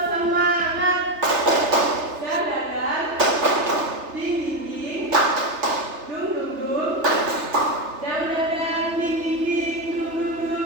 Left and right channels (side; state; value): left; late; 3.3 ms